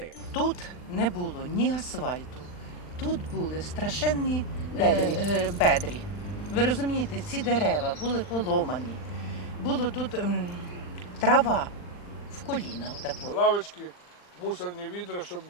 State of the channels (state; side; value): late; right; 39 ms